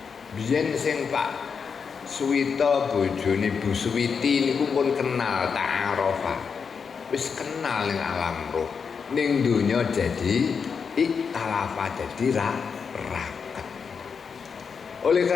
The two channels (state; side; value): quieter; right; 6.0 dB